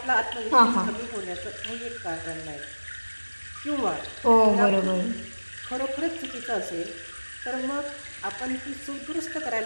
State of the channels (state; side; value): inverted; both; correlation -1.00